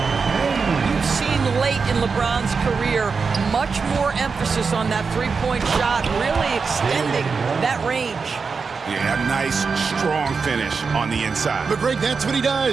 You've seen late in LeBron's career much more emphasis on that three-point shot, really extending that range. Yeah, a nice, strong finish on the inside. But Greg, that's what he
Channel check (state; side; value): quieter; left; 5.1 dB